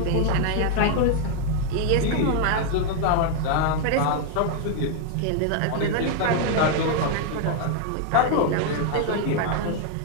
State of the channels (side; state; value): both; different; correlation 0.00